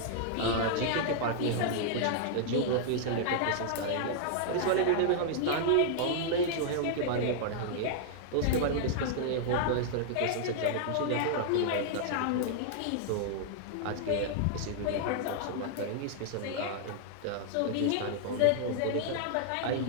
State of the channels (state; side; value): different; both; correlation -0.01